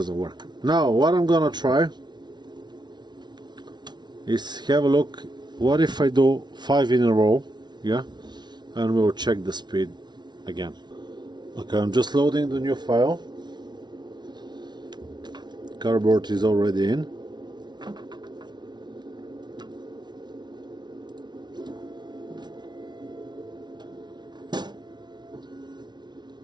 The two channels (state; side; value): late; left; 0.20 ms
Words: work. Now what I'm gonna try is have a look. What if I do 5 in a row? Yeah, and we'll check the speed again. Okay, I'm just loading the new file. Cardboard is already in.